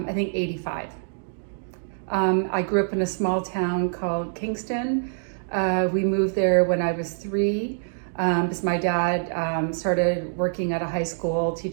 think, 85. I grew up in a small town called Kingston. We moved there when I was 3. Because my dad started working at a high school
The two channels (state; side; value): silent; left; digital silence